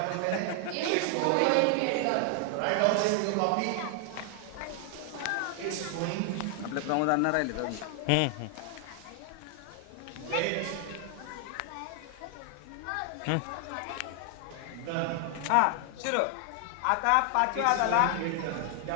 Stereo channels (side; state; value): both; different; correlation 0.00